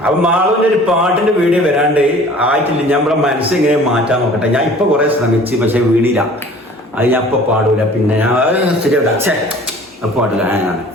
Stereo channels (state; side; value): normal; both; correlation 0.48